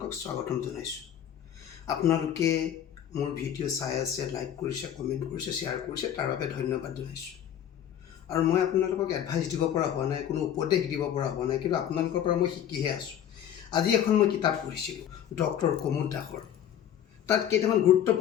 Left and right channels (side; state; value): right; quieter; 10.0 dB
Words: স্বাগতম জনাইছোঁ। আপোনালোকে মোৰ ভিডিঅ' চাই আছে, লাইক কৰিছে, কমেণ্ট কৰিছে, শ্বেয়াৰ কৰিছে, তাৰ বাবে ধন্যবাদ জনাইছোঁ। আৰু মই আপোনালোকক এডভাইচ দিব পৰা হোৱা নাই, কোনো উপদেশ দিব পৰা হোৱা নাই, কিন্তু আপোনালোকৰ পৰা মই শিকিহে আছোঁ। আজি এখন মই কিতাপ পঢ়িছিলোঁ ডক্টৰ কুমুদ দাসৰ। তাত কেইটামান